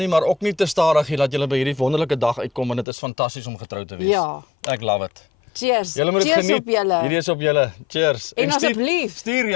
maar ook nie te stadig nie, dat julle by hierdie wonderlike dag uitkom en dit is fantasties om getrou te wees. Ja. Ek love it. Cheers. Julle moet dit Cheers geniet. op julle. Hierdie is op julle. Cheers. En asseblief.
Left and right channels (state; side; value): drops out; right; at 2.9 s